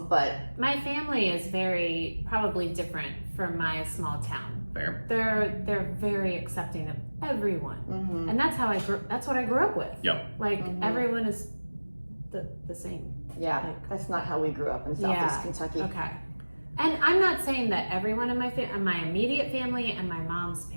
but my family is very probably different from my small town. Fair. They're very accepting of everyone, and that's how that's what I grew up with. Yep. Like everyone is the same. Yeah, like, that's not how we grew up in Southeast Kentucky. Okay. And I'm not saying that everyone in my immediate family and my mom's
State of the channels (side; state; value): both; inverted; correlation -1.00